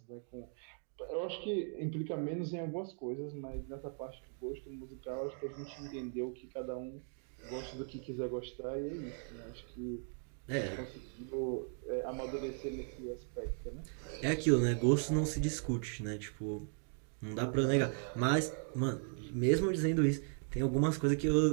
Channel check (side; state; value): left; silent; 53 dB below the other